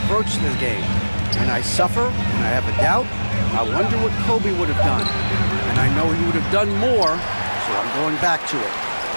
to the game. When I suffer, when I have a doubt, I wonder what Kobe would have done. and I know he would have done more, so I'm going back to it.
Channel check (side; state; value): both; inverted; correlation -1.00